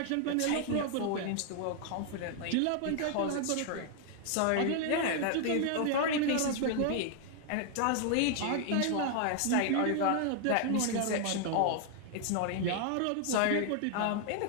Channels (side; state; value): both; different; correlation 0.00